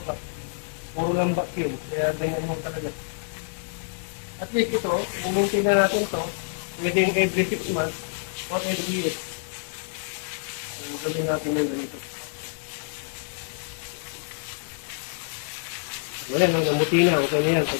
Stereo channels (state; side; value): silent; right; 56 dB below the other